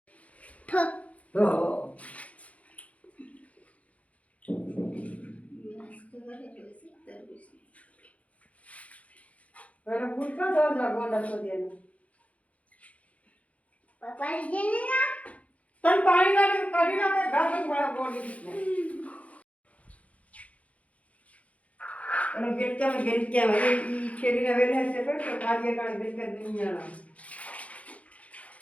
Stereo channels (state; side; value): late; right; 0.066 ms